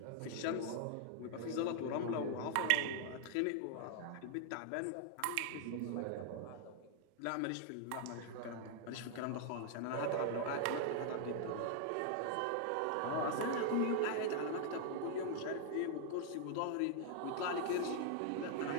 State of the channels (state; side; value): different; both; correlation 0.00